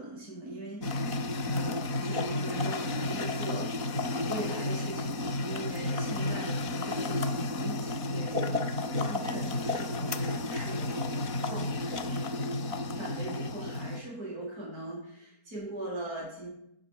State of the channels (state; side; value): late; left; 4.4 ms